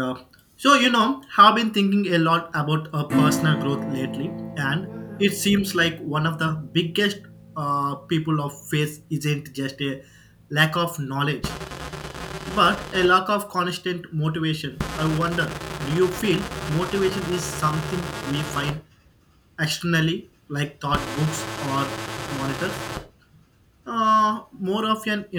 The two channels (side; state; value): both; identical; correlation 1.00